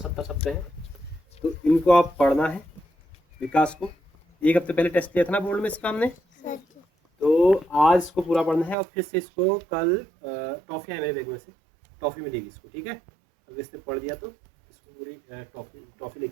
शब्द हैं। तो इनको आप पढ़ना है। विकास को एक हफ्ते पहले टेस्ट लिया था ना बोर्ड में इसका हमने, तो आज इसको पूरा पढ़ना है और फिर से इसको कल टॉफ़ी है मेरे बैग में से, टॉफ़ी मिलेगी इसको, ठीक है। अगर इसने पढ़ दिया तो इसको पूरी टॉफ़ी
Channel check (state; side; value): drops out; left; at 8.8 s